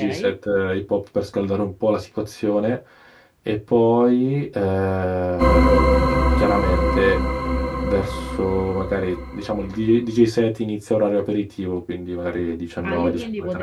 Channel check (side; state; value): both; identical; correlation 1.00